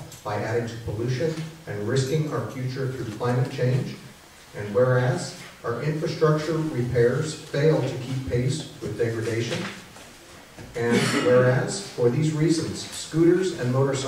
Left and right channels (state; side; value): identical; both; correlation 1.00